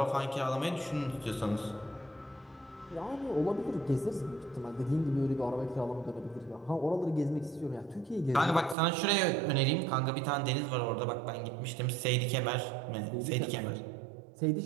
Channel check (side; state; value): left; drops out; at 8.8 s